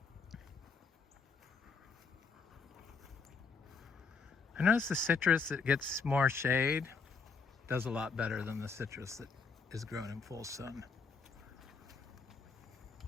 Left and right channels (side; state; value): right; quieter; 4.9 dB